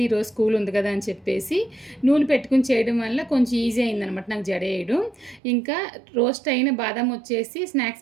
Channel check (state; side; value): drops out; left; at 5.4 s